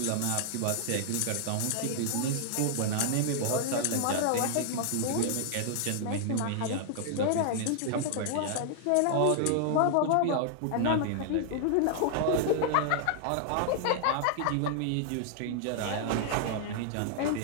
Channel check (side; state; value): both; different; correlation -0.01